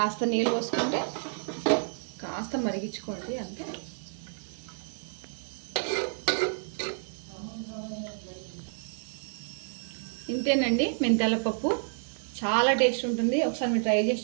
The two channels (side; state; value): left; silent; digital silence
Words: నీళ్ళు పోసుకుంటే కాస్త మరిగించుకోండి అంతే. ఇంతేనండి మెంతాల పప్పు. చాలా టేస్ట్ ఉంటుంది, ఒకసారి మీరు ట్రై చేసి